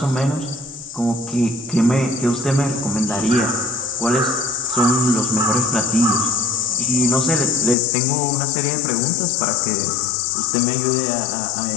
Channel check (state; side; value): drops out; right; at 7.8 s